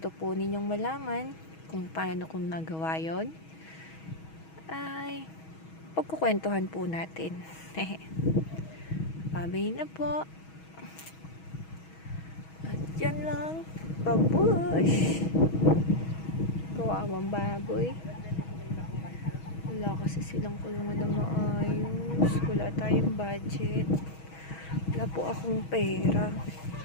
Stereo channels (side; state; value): right; late; 6.3 ms